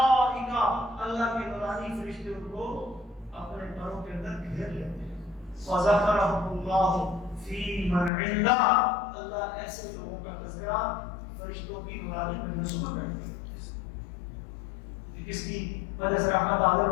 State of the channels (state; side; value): drops out; right; at 8.1 s